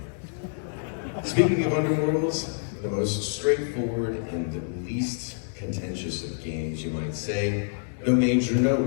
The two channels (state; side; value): silent; right; digital silence